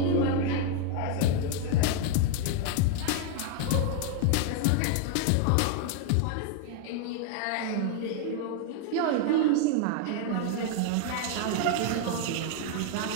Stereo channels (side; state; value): both; different; correlation 0.00